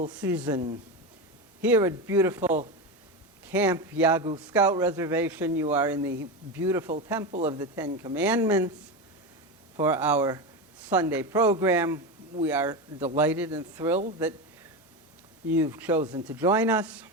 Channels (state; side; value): normal; both; correlation 0.18